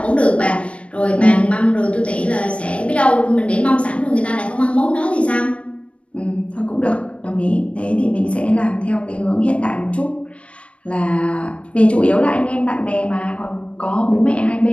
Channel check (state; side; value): late; right; 0.061 ms